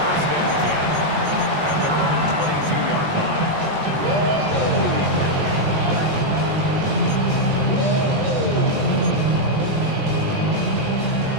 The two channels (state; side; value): late; left; 20 ms